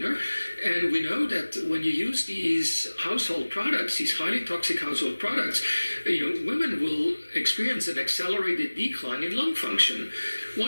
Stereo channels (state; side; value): inverted; both; correlation -1.00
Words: And we know that when you use these household products, these highly toxic household products, women will experience an accelerated decline in lung function.